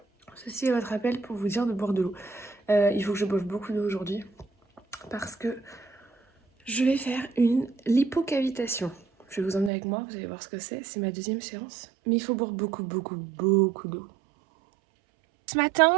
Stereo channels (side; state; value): left; drops out; at 9.7 s